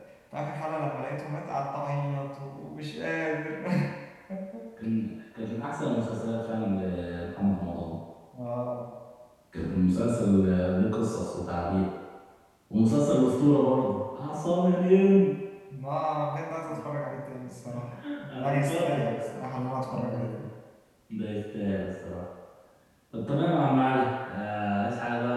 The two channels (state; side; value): identical; both; correlation 1.00